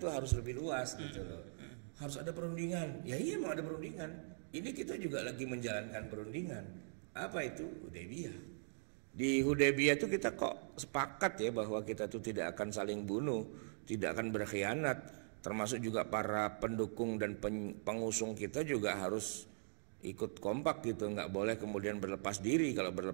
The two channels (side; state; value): left; silent; digital silence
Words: itu harus lebih luas gitu loh. Harus ada perundingan. Ya iya memang ada perundingan. Ini kita juga lagi menjalankan perundingan. Apa itu? Hudaybiyah. Di Hudaybiyah itu kita kok sepakat ya bahwa kita tuh tidak akan saling bunuh, tidak akan berkhianat. Termasuk juga para pendukung dan pengusung kita juga harus ikut kompak gitu. Nggak boleh kemudian berlepas diri. Kalau